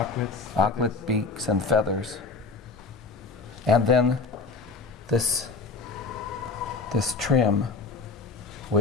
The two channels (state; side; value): quieter; right; 4.3 dB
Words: Auklet beaks and feathers. And then this trim,